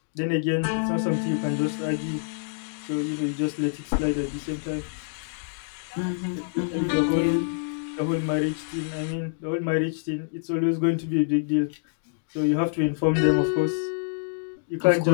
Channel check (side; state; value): right; silent; digital silence